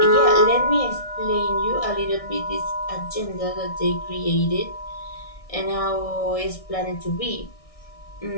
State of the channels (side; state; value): right; late; 1.6 ms